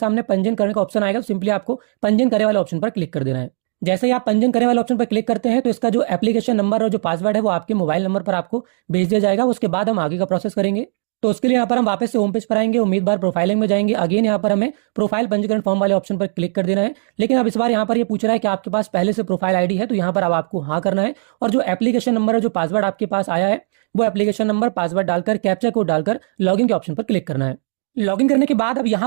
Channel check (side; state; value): left; silent; digital silence